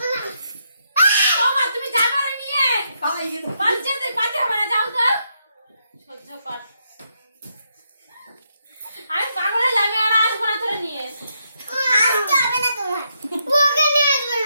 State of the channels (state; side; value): inverted; both; correlation -0.79